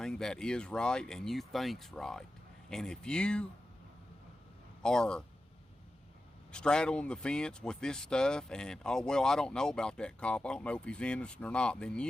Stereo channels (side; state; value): both; normal; correlation 0.92